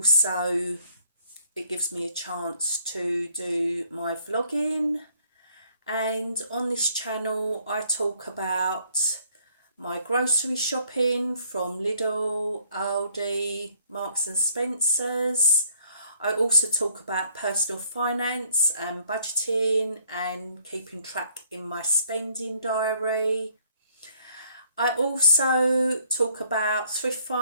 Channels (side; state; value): both; inverted; correlation -0.64